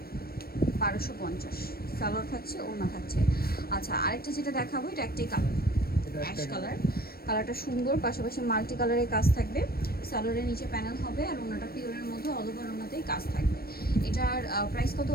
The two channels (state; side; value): late; right; 0.44 ms